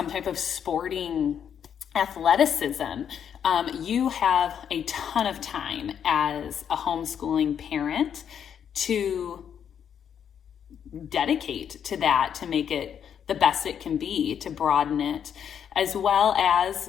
type of sporting athleticism, you have a ton of time as a homeschooling parent to dedicate to that, to make it the best it can be, to broaden it, as well as,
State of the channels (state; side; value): quieter; right; 8.4 dB